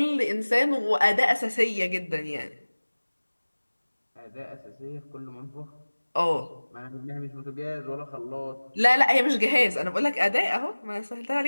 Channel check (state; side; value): inverted; both; correlation -1.00